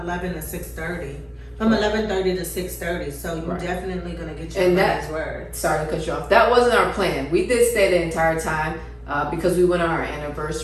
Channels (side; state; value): both; identical; correlation 1.00